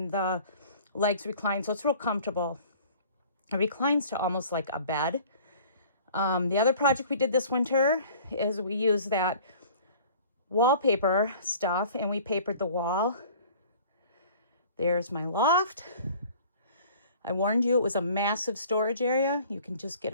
the legs recline, so it's real comfortable. It reclines to almost like a bed. The other project we did this winter is we used that wallpaper stuff and we papered the wall. There's my loft. I warned you it was a massive storage area. You can just get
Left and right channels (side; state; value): both; inverted; correlation -0.48